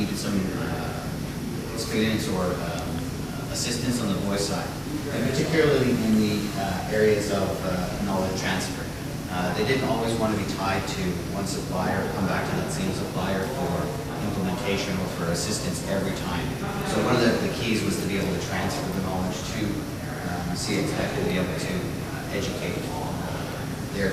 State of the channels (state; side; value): identical; both; correlation 1.00